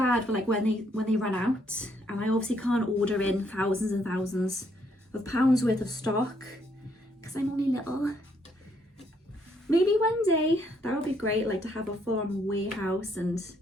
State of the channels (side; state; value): both; normal; correlation 0.71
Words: for like when they run out, and I obviously can't order in thousands and thousands of pounds worth of stock because I'm only little. Maybe one day that would be great, like to have a full-on warehouse and